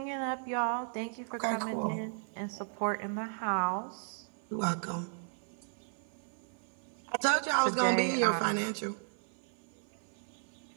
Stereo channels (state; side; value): silent; left; 54 dB below the other